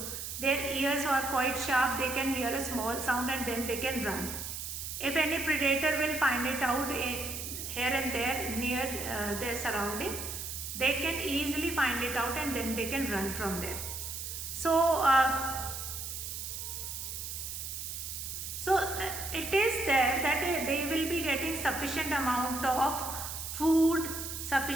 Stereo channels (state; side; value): noise; right; hiss, 6 dB below the sound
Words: Their ears are quite sharp, they can hear a small sound and then they can run. If any predator will find it out here and there near their surrounding, they can easily find it out and then they can run from there. So, it is there that they will be getting sufficient amount of food,